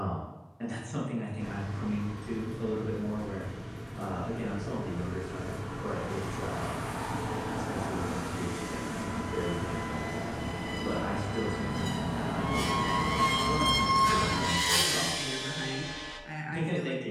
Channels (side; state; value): both; identical; correlation 1.00